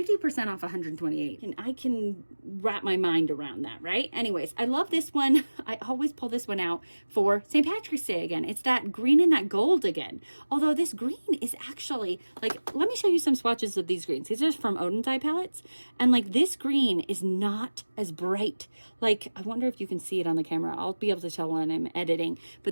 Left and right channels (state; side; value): inverted; both; correlation -1.00